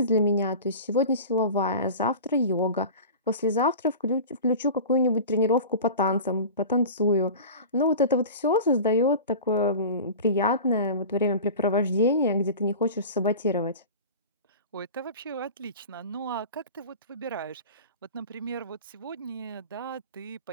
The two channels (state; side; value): inverted; both; correlation -0.34